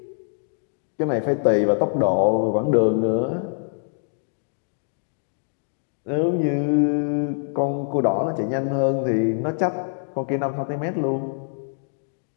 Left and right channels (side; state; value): right; silent; digital silence